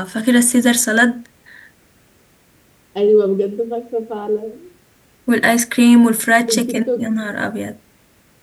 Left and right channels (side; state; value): both; identical; correlation 1.00